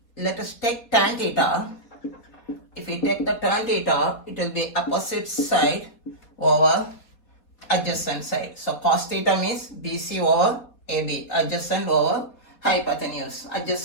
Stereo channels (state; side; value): late; right; 4.2 ms